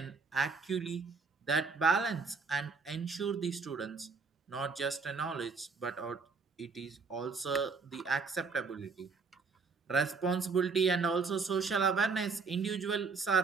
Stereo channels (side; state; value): left; quieter; 4.8 dB